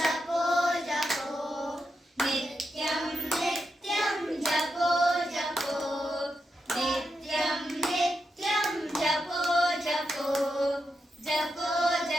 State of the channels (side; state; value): both; normal; correlation 0.86